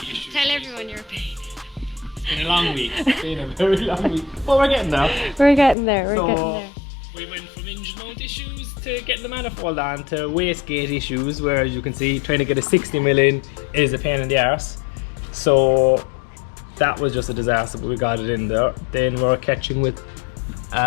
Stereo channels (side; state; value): right; drops out; at 5.8 s